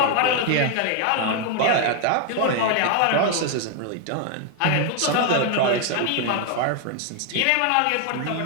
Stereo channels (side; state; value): both; different; correlation 0.00